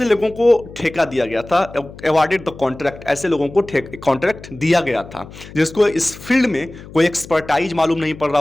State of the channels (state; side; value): noise; left; hum, 17 dB below the sound